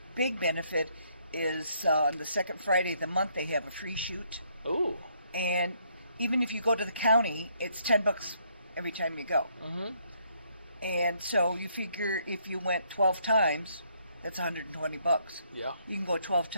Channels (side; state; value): both; inverted; correlation -0.70